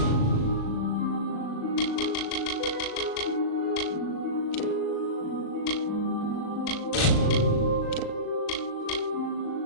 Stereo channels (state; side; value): late; right; 37 ms